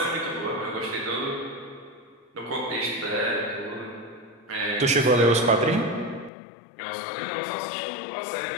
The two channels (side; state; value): right; drops out; at 6.3 s